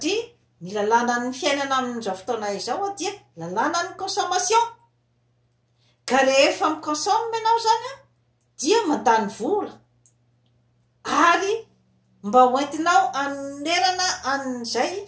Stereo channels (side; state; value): both; identical; correlation 1.00